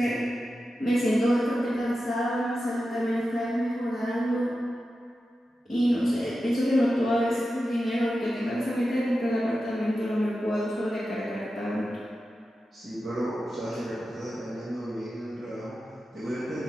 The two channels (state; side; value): normal; both; correlation 0.92